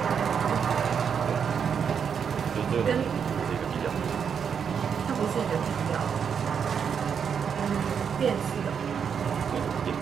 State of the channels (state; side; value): quieter; left; 7.1 dB